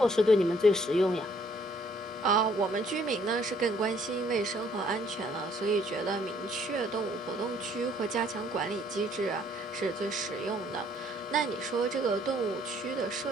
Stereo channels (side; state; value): both; normal; correlation 0.63